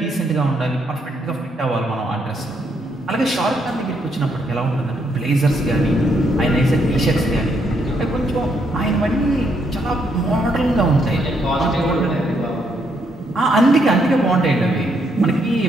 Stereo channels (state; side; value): normal; both; correlation 0.74